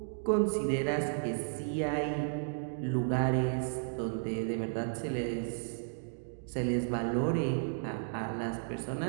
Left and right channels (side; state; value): left; silent; digital silence